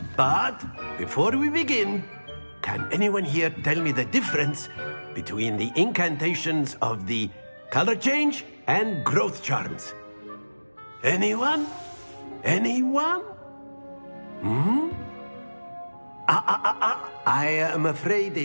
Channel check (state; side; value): inverted; both; correlation -1.00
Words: But before we begin, can anyone here tell me the difference between the incantations of the color change and growth charms? Anyone? Anyone? I am afraid